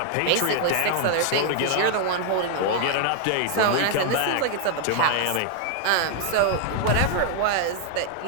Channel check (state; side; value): different; both; correlation 0.00